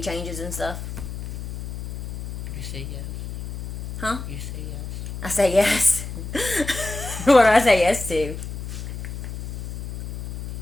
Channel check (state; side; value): noise; left; hum, 7 dB below the sound